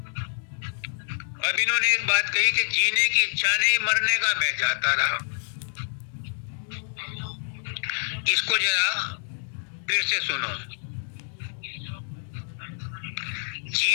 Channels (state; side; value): silent; right; digital silence